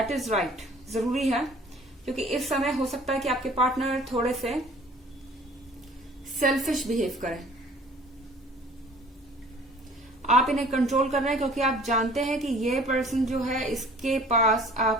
इज राइट, जरूरी है, क्योंकि इस समय हो सकता है कि आपके पार्टनर थोड़े से सेल्फिश बिहेव करें। आप इन्हें कंट्रोल कर रहे हैं क्योंकि आप जानते हैं कि ये पर्सन जो है इसके पास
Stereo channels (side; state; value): both; normal; correlation 0.51